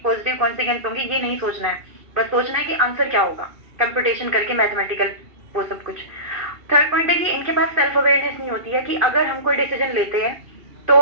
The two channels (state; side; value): late; left; 2.5 ms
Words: पॉजिटिव कॉन्सिक्वेंस होंगे, ये नहीं सोचना है. बस सोचना है कि आंसर क्या होगा, कंप्यूटेशन करके मैथमेटिकल वो सब कुछ. थर्ड पॉइंट है कि इनके पास सेल्फ अवेयरनेस नहीं होती है कि अगर हम कोई डिसीजन लेते हैं तो,